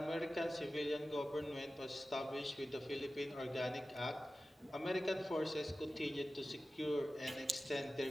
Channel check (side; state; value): both; normal; correlation 0.95